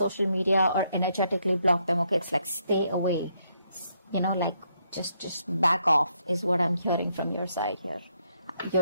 media or energetically blocked them, okay? It's like stay away. Like just back off is what I'm hearing from your side here.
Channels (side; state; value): both; inverted; correlation -0.75